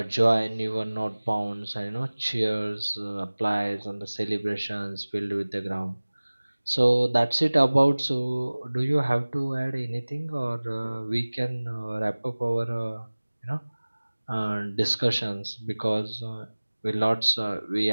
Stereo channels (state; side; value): inverted; both; correlation -1.00